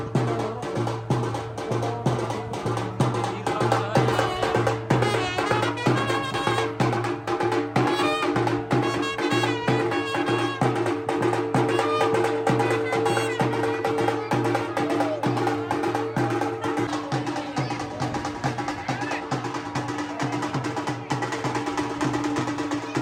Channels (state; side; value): identical; both; correlation 1.00